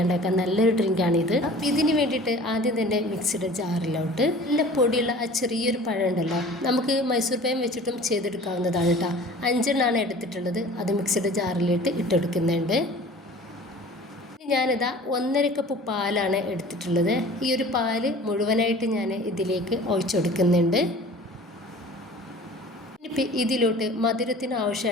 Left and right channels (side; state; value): both; normal; correlation 0.44